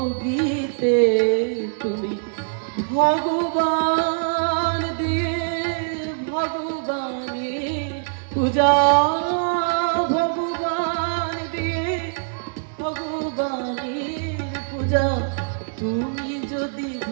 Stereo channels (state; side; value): silent; left; digital silence